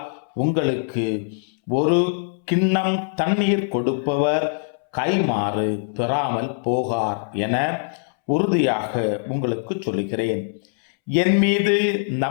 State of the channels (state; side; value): silent; right; 64 dB below the other